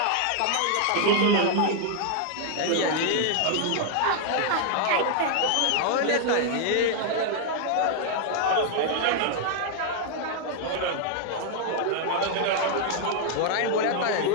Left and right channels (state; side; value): different; both; correlation 0.00